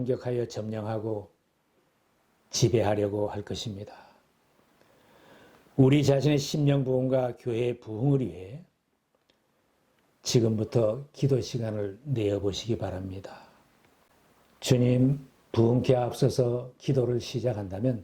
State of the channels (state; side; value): identical; both; correlation 1.00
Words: 점령하고 지배하려고 할 것입니다. 우리 자신의 심령 부흥과 교회의 부흥을 위해 지금부터 기도 시간을 내어보시기 바랍니다. 주님, 부흥케 앞서서 기도를